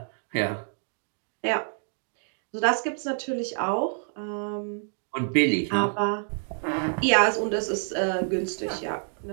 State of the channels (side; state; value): left; silent; digital silence